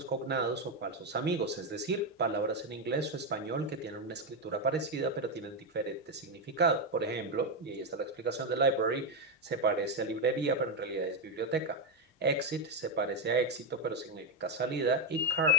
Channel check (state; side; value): normal; both; correlation 0.07